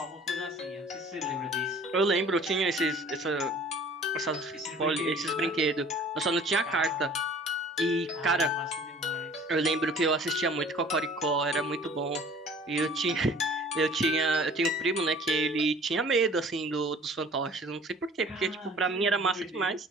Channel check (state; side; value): normal; both; correlation 0.49